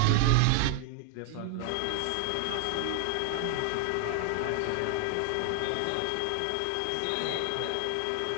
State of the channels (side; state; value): both; different; correlation 0.00